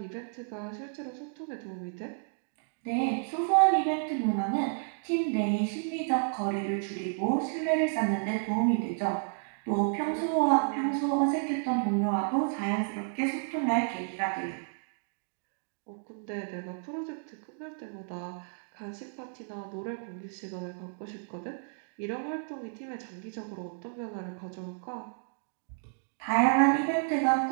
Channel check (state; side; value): silent; left; digital silence